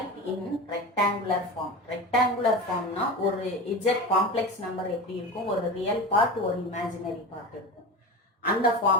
in rectangular form. Rectangular form na ஒரு z complex number எப்படி இருக்கும், ஒரு real part ஒரு imaginary part இருக்கும். அந்த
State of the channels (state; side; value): normal; both; correlation 0.27